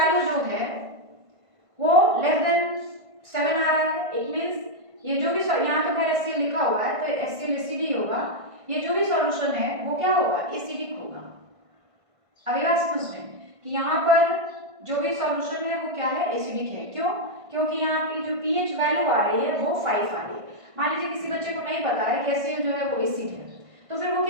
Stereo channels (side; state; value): left; late; 1.5 ms